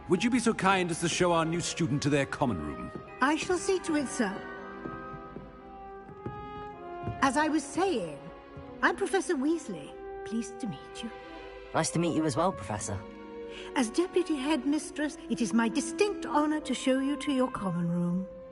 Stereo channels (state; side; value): identical; both; correlation 1.00